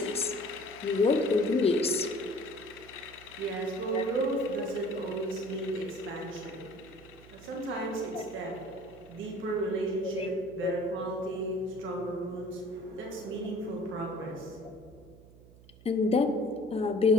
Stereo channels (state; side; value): noise; right; hum, 22 dB below the sound